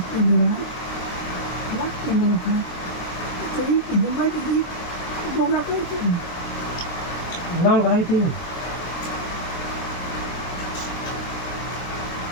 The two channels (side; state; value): right; late; 23 ms